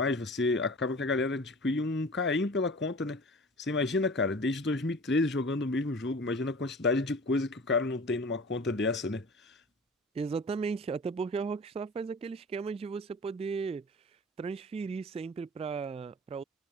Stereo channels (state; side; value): normal; both; correlation 0.40